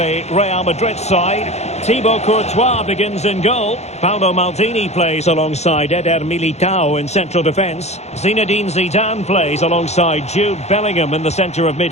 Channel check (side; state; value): right; late; 0.32 ms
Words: Real Madrid side. Thibaut Courtois begins in goal. Paolo Maldini plays alongside Eder Militao in central defence. Zinedine Zidane plays alongside Jude Bellingham in the centre of